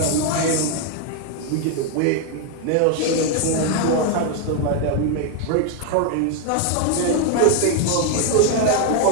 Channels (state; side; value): different; both; correlation 0.01